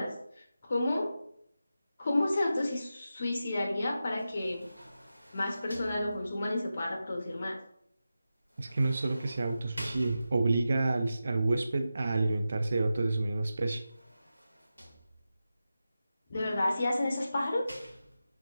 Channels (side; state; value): both; inverted; correlation -0.91